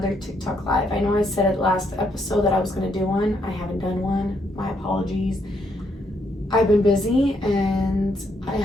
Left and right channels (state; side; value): normal; both; correlation 0.74